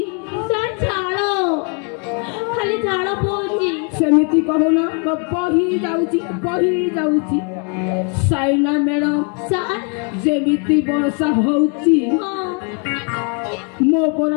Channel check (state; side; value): quieter; right; 38.2 dB